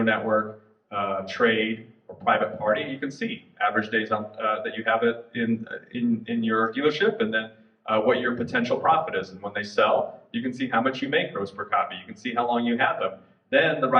network, trade, or private party. You can see average days on, that you have it in your dealership, and then what your potential profit is. And when they sell, you can see how much you make gross per copy. You can see how long you have them. Then the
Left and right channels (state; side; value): identical; both; correlation 1.00